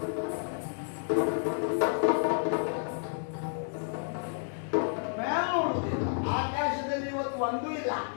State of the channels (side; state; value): right; silent; digital silence